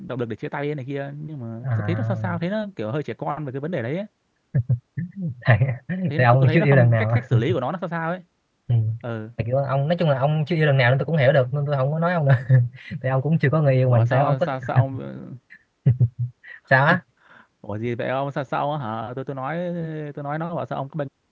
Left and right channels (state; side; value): identical; both; correlation 1.00